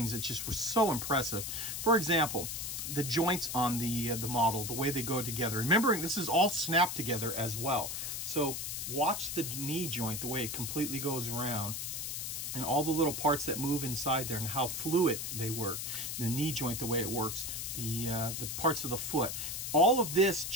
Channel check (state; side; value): noise; left; hiss, 4 dB below the sound